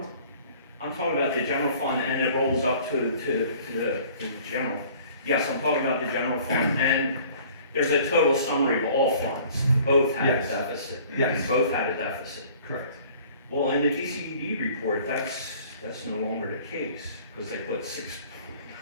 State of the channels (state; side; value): inverted; both; correlation -0.51